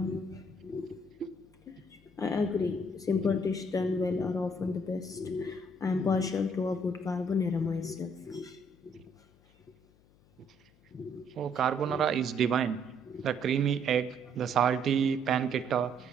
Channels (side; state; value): left; noise; hum, 29 dB below the sound